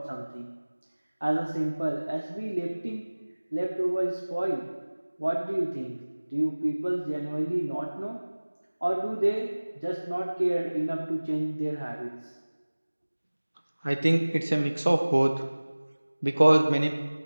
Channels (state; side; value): inverted; both; correlation -1.00